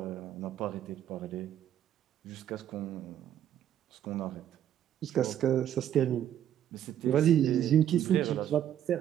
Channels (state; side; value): quieter; left; 10.7 dB